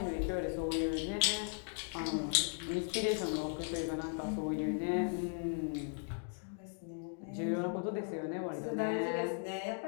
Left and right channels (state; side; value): silent; right; 53 dB below the other